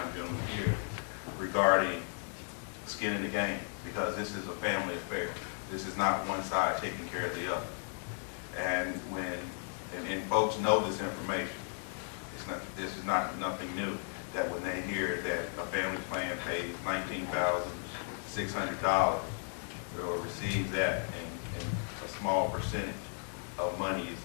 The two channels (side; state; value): right; silent; 54 dB below the other